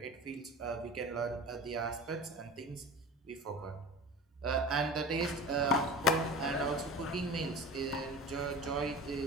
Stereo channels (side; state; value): both; normal; correlation 0.34